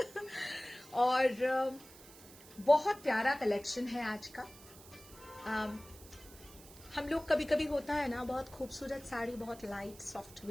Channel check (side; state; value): right; noise; hiss, 20 dB below the sound